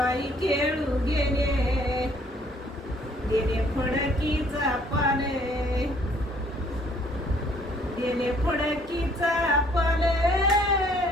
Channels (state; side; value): normal; both; correlation 0.61